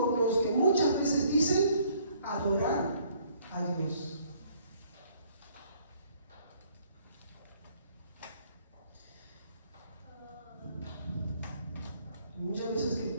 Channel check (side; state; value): both; inverted; correlation -0.62